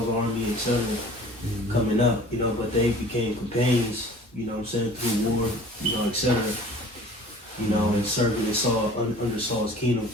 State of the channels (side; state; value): both; normal; correlation 0.46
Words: army, etc. Coming up, but they became companions. You know what I'm saying, through war, etc. And serving in Saul under Saul's kingdom.